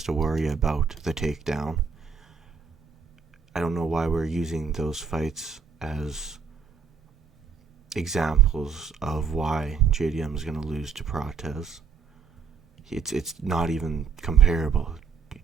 to worry about the takedown. I don't know why we're using those fights as examples of why JDM is going to lose to Prates. It's not even comparable.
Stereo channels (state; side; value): quieter; left; 5.8 dB